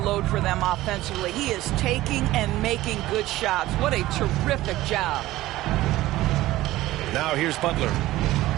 for them offensively. He is taking and making good shots. What a terrific job. Now here's Butler.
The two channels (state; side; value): quieter; left; 16.4 dB